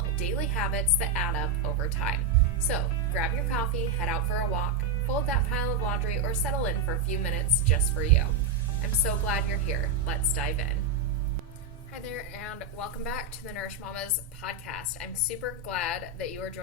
daily habits that add up over time. So grab your coffee, head out for a walk, fold that pile of laundry, or settle in for a few minutes just for you. I'm so glad you're here. Let's dive in. Hi there, and welcome back to the Nourished Mamas Podcast. I'm super glad that you are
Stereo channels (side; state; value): left; quieter; 4.2 dB